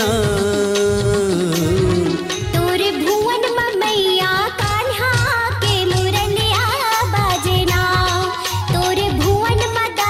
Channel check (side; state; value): both; identical; correlation 1.00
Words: तोरे भुवन मैया कान्हा के मुरलिया बाजना, तोरे भुवन